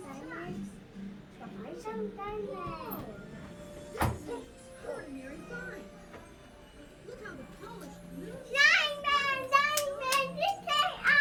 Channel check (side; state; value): both; identical; correlation 1.00